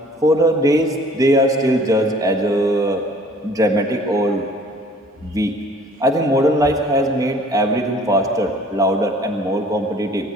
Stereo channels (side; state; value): both; normal; correlation 0.52